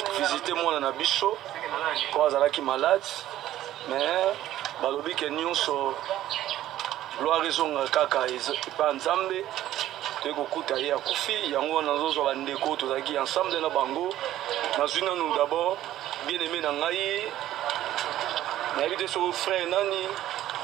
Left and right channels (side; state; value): left; quieter; 13.3 dB